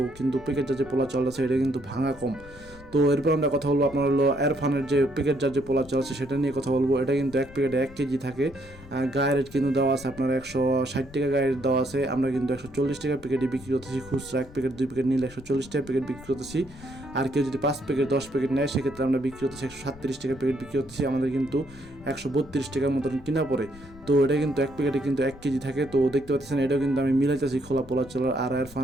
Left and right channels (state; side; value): noise; left; rumble, 20 dB below the sound